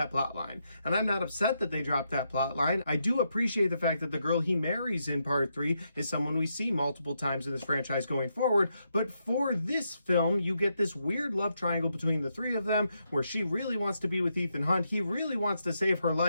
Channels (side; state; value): both; inverted; correlation -0.81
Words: plot line. And I'm not upset that they dropped that plot line. I do appreciate the fact that the girl he marries in part 3 is someone we see multiple times in this franchise going forward, but for this film, you get this weird love triangle between the three of them, where she really wants to be with Ethan Hunt, he really wants to save her